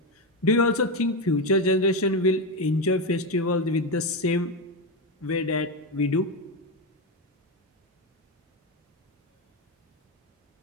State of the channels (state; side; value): normal; both; correlation 0.11